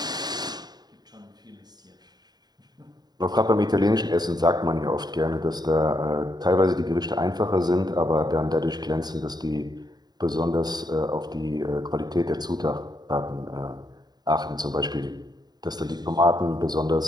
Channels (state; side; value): late; left; 0.20 ms